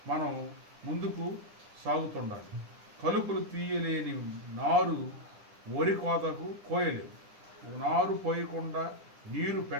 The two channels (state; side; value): late; left; 9.9 ms